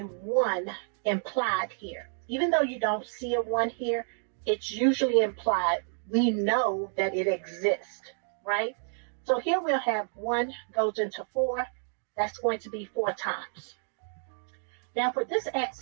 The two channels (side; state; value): left; silent; 58 dB below the other